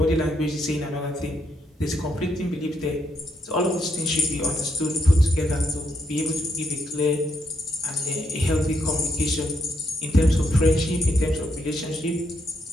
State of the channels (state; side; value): normal; both; correlation 0.78